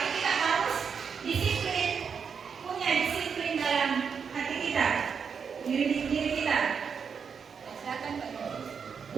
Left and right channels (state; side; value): quieter; left; 6.4 dB